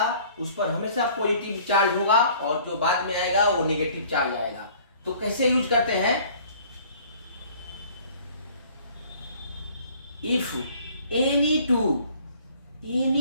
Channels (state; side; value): inverted; both; correlation -0.53